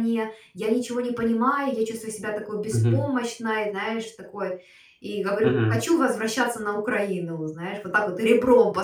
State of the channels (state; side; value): identical; both; correlation 1.00